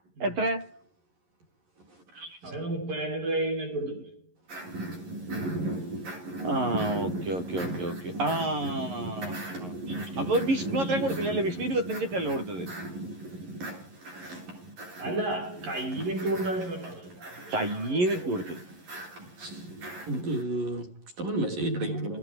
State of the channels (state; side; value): late; left; 11 ms